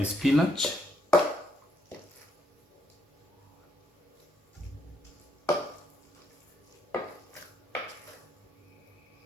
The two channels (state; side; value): normal; both; correlation 0.74